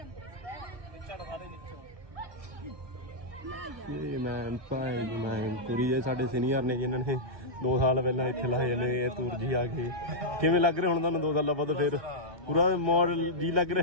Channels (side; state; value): left; late; 1.2 ms